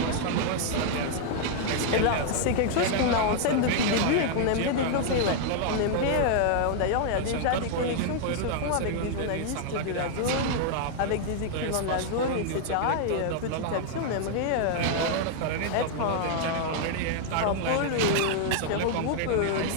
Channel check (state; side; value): different; both; correlation 0.00